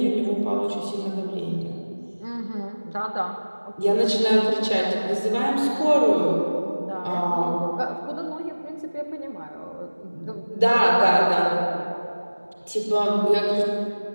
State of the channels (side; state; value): both; inverted; correlation -1.00